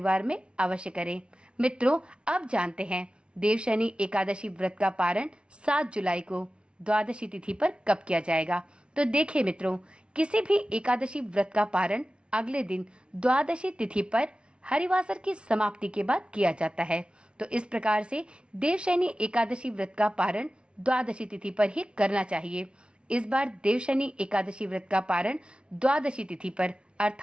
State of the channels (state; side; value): late; left; 0.057 ms